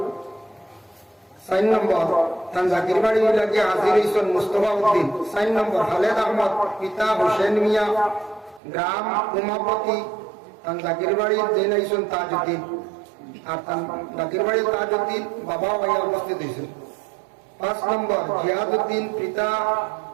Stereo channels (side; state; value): left; drops out; at 8.6 s